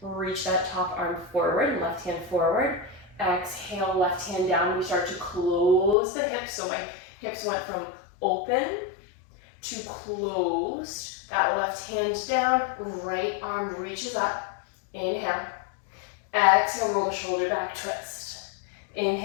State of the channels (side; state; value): right; drops out; at 6.0 s